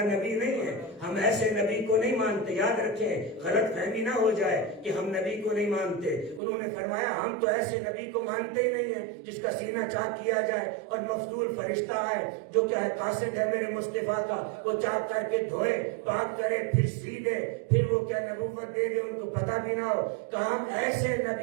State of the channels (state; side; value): drops out; left; at 6.4 s